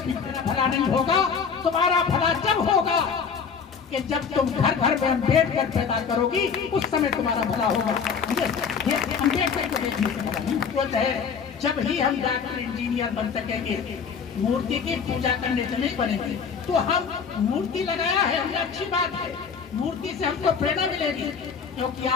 नहीं होगा। तुम्हारा भला जब होगा कि जब तुम घर घर में अम्बेडकर पैदा करोगी, उस समय तुम्हारा भला होगा। ये अम्बेडकर को देखने से भला नहीं होता है। जब ही हम डॉक्टर इंजीनियर बन सकेंगे, मूर्ति की पूजा करने से नहीं बनेंगे। तो हम मूर्ति लगाया है, हमने अच्छी बात है, मूर्ति से हमको प्रेरणा मिलेगी। क्योंकि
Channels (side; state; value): right; quieter; 6.2 dB